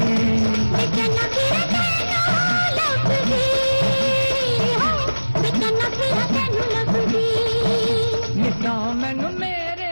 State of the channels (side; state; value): both; inverted; correlation -1.00